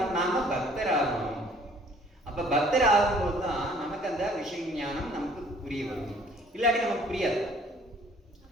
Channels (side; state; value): both; normal; correlation 0.56